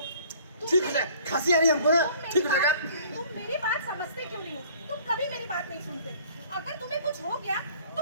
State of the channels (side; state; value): both; inverted; correlation -0.53